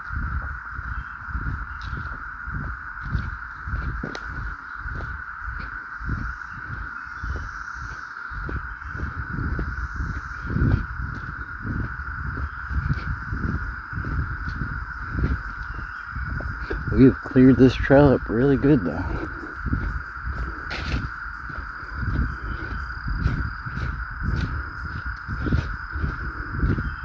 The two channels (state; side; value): identical; both; correlation 1.00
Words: We've cleared this trail up really good though.